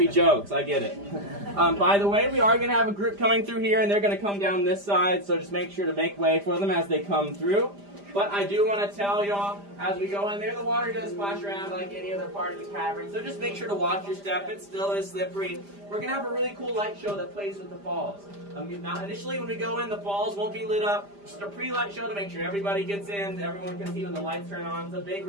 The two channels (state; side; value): late; left; 5.0 ms